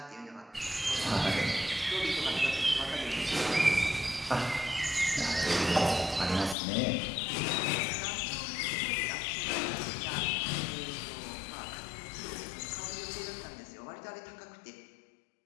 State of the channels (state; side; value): drops out; right; at 6.6 s